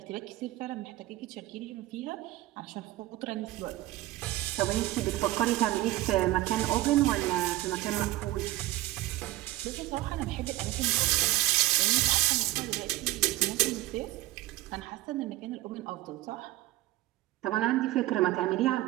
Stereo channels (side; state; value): left; quieter; 17.4 dB